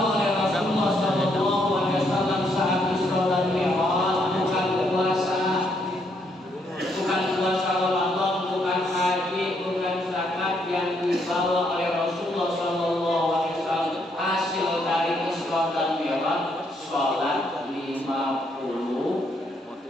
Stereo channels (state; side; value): normal; both; correlation 0.73